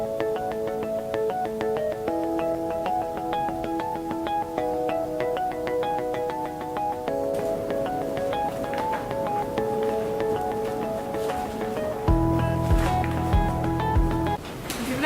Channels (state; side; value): identical; both; correlation 1.00